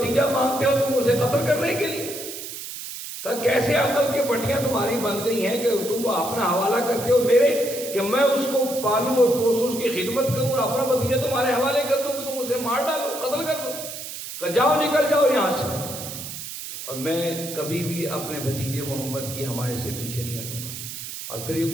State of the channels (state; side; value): noise; right; hiss, 9 dB below the sound